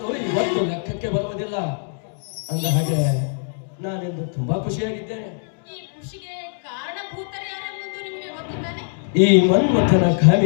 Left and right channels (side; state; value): right; silent; 64 dB below the other